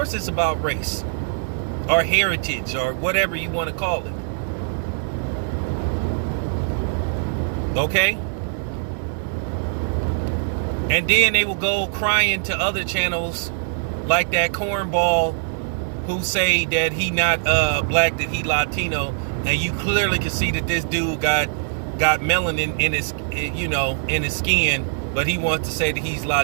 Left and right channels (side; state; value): left; silent; digital silence